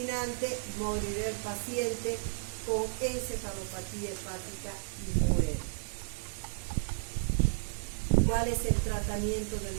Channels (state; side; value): silent; left; digital silence